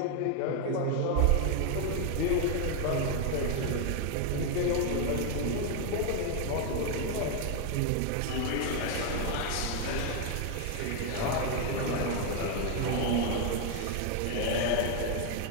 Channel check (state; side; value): different; both; correlation 0.00